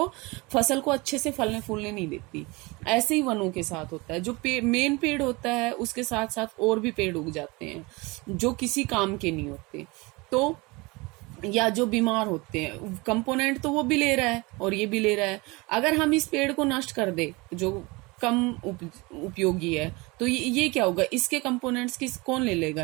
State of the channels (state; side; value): quieter; left; 25.0 dB